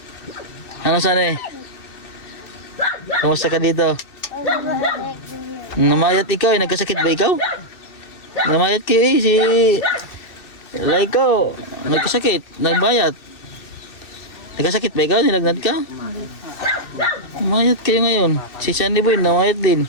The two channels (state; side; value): late; right; 2.6 ms